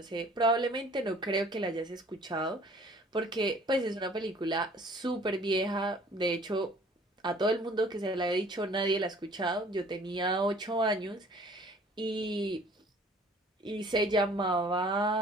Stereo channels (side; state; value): both; normal; correlation 0.53